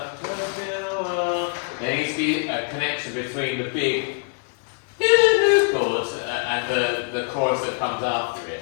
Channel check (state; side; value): quieter; right; 39.1 dB